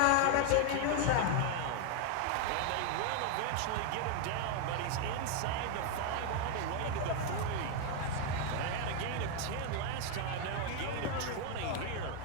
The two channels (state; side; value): different; both; correlation 0.00